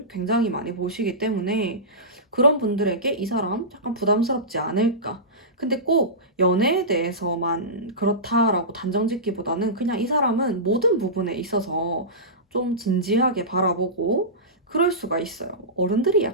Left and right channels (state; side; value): normal; both; correlation -0.19